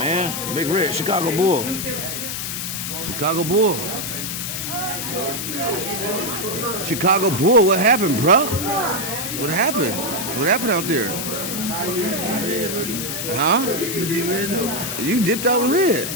Big Red. Chicago Bull. Chicago Bull. Chicago Bull. What happened, bro? What happened? What happened out there? Huh? You dipped out in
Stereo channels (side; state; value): left; noise; hiss, 4 dB below the sound